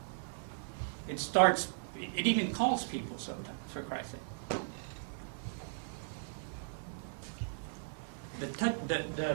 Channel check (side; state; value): left; silent; 53 dB below the other